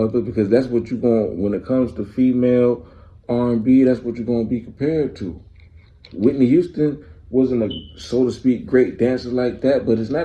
because that's what you going when it comes to female R&B. That's what you're gonna be compared to. Whitney Houston wasn't a, so to speak, great dancer like that, but it's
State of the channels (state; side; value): identical; both; correlation 1.00